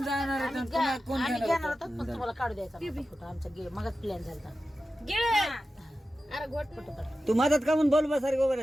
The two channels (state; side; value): normal; both; correlation 0.93